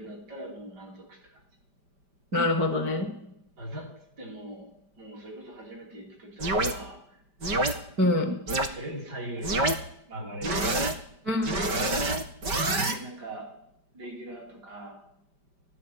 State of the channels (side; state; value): left; late; 5.2 ms